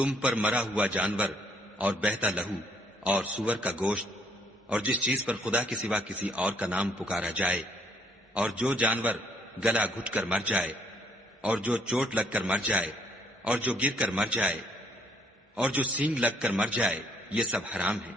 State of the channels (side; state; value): both; normal; correlation 0.66